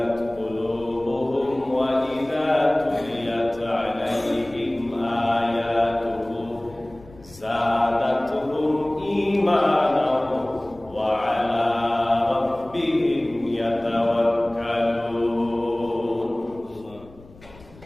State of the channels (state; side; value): noise; left; rumble, 23 dB below the sound